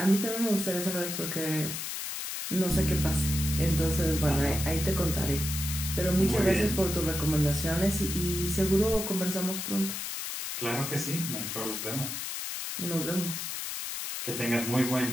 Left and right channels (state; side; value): noise; left; hiss, 5 dB below the sound